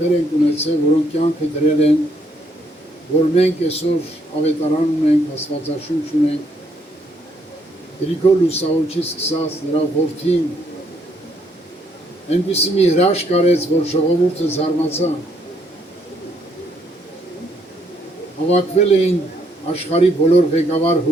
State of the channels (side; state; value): both; normal; correlation 0.71